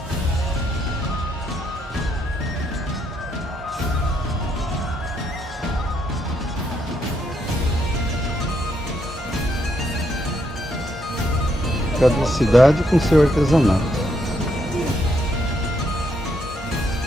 Cada cidade com seu artesanato.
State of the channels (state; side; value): normal; both; correlation 0.76